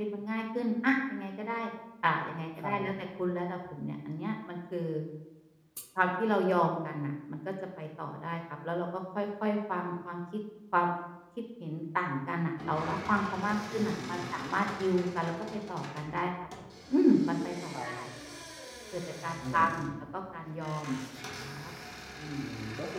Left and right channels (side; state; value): both; identical; correlation 1.00